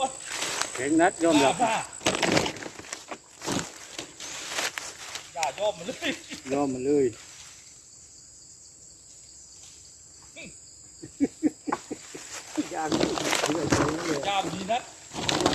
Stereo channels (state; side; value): identical; both; correlation 1.00